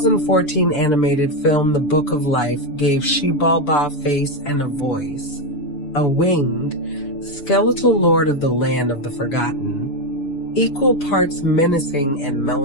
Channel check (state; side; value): late; right; 6.9 ms